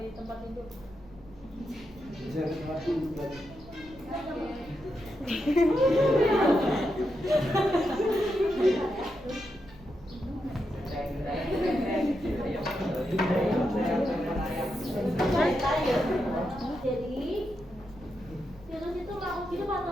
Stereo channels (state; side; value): noise; left; hum, 25 dB below the sound